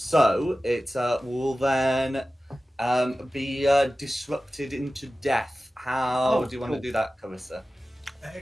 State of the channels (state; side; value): normal; both; correlation 0.95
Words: it will then be disrupted into death. How do you want to do that, Carissa?